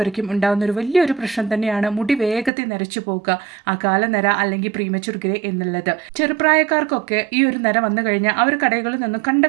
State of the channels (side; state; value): left; drops out; at 2.5 s